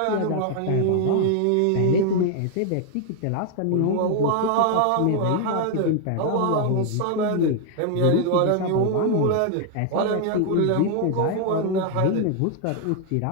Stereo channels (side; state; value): both; different; correlation 0.00